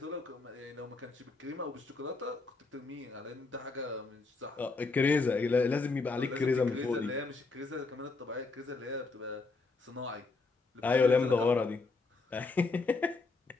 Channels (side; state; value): right; quieter; 3.8 dB